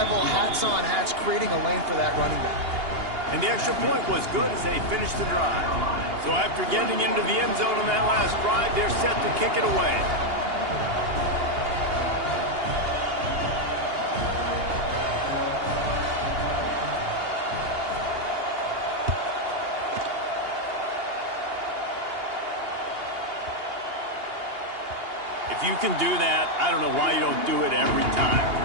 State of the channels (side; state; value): left; late; 2.8 ms